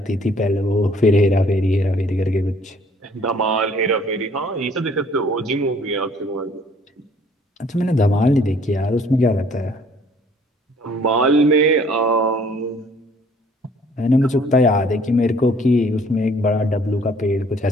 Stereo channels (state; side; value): normal; both; correlation 0.58